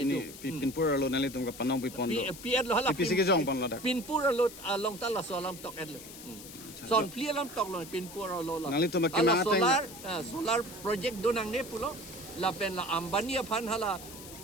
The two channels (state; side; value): noise; left; hiss, 15 dB below the sound